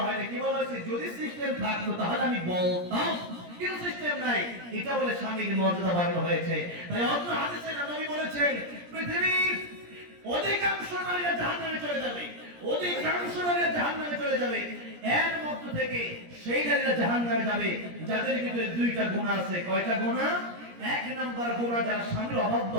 হয়নি কি বলা হয়েছে যদি সিস্টেম থাকতো তাহলে আমি বলতাম কিন্তু সিস্টেম নাই এটা বলে স্বামীর মর্যাদা বাড়ানো হয়েছে তাই অন্য হাদিসে নবী বলেছেন পৃথিবীর অধিকাংশ নারীরা জাহান্নামে চলে যাবে অধিকাংশ নারীরা জাহান্নামে চলে যাবে এর মধ্য থেকে সেই নারীরা জাহান্নামে যাবে যাদের ভিতরে দুইটা গুনাহ আছে কয়টা গুনাহ এক নাম্বার গুনাহ যারা স্বামীর অবাধ্য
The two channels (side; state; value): left; late; 17 ms